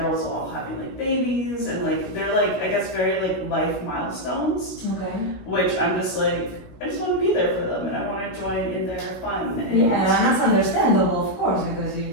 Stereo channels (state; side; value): late; right; 16 ms